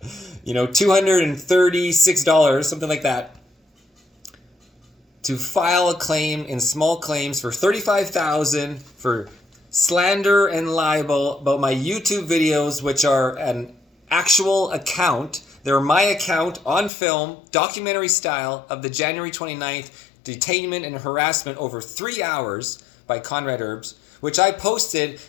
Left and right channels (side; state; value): right; drops out; at 16.9 s